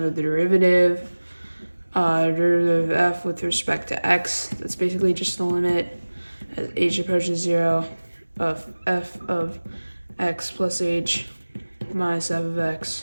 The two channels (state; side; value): inverted; both; correlation -1.00